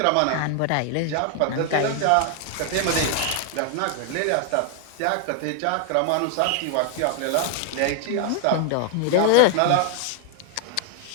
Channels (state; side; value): different; both; correlation 0.00